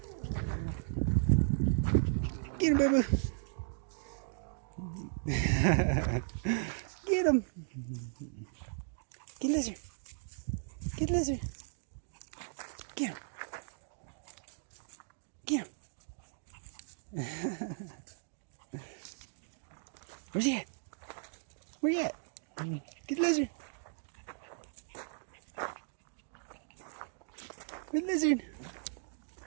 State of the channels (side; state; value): left; silent; digital silence